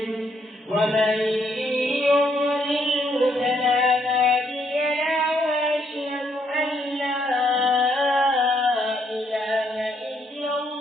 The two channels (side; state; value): both; normal; correlation 0.72